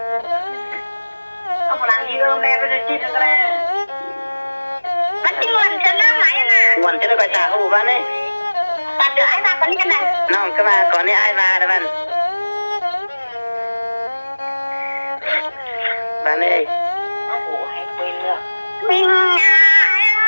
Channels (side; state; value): both; inverted; correlation -1.00